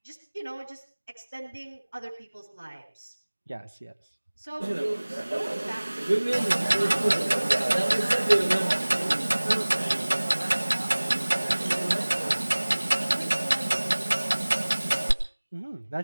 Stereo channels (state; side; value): inverted; both; correlation -1.00